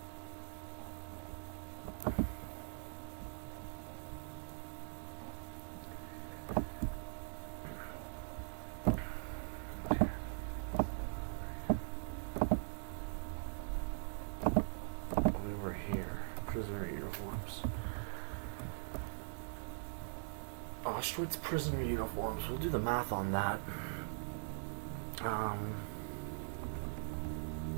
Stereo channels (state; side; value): silent; left; digital silence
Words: Prisoner uniforms. Auschwitz prisoner uniforms. We'll do the math on that.